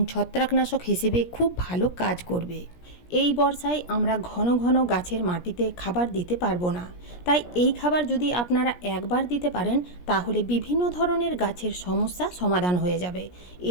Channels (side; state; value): right; late; 17 ms